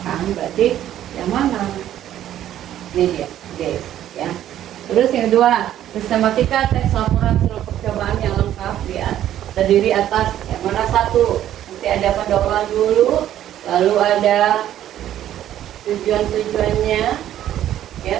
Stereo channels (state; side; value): quieter; left; 11.8 dB